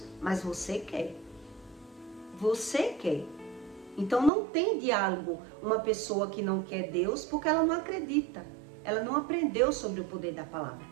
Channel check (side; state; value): left; drops out; at 4.3 s